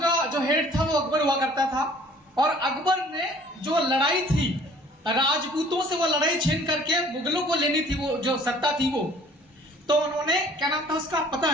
जो हेड था वो अकबर हुआ करता था, और अकबर ने जो लड़ाई थी राजपूतों से, वो लड़ाई छीन करके मुगलों को लेनी थी, वो जो सत्ता थी वो। तो उन्होंने, क्या नाम था उसका पता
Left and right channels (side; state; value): both; normal; correlation 0.54